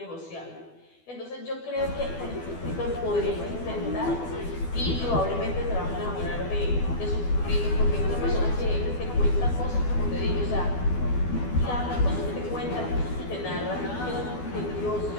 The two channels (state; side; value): late; right; 12 ms